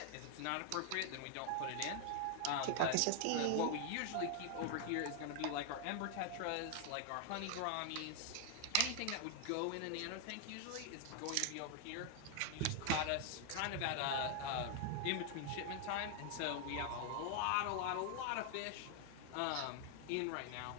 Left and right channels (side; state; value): both; different; correlation 0.00